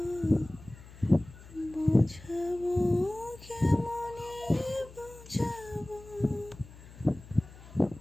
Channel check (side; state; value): left; noise; hum, 19 dB below the sound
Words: বোঝাবো কেমনে বোঝাবো।